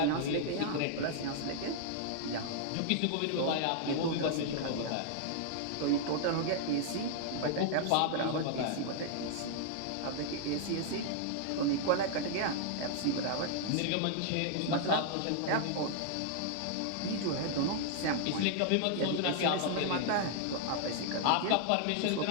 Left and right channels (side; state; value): both; different; correlation -0.01